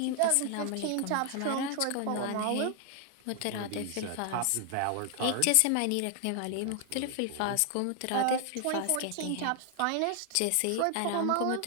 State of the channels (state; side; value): different; both; correlation 0.00